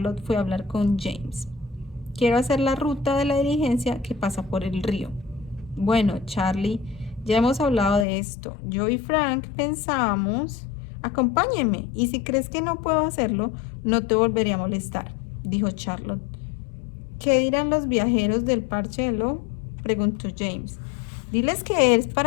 fue a hablar con James. Quiero hacer la ruta de la diligencia que pasa por el río. Bueno, Charlie, ya hemos hablado de esto. Yo y Frank pensamos... Acompáñeme, y si crees que no puedo hacerlo, no te volveré a molestar, dijo Charlotte. ¿Qué dirán los viajeros del parche de Lowe?, preguntó James. Diles que es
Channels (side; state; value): right; drops out; at 8.1 s